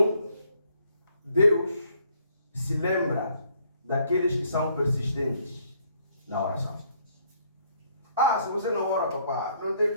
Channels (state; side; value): inverted; both; correlation -0.67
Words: Deus se lembra daqueles que são persistentes na oração. Se você não ora, papá, não